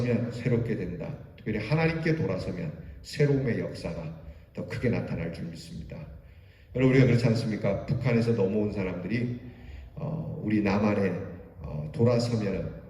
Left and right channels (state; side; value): identical; both; correlation 1.00